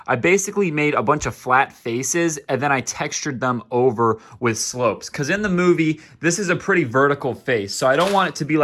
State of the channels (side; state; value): both; identical; correlation 1.00